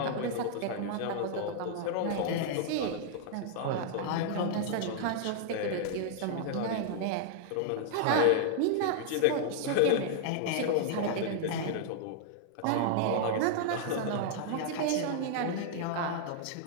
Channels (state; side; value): different; both; correlation -0.01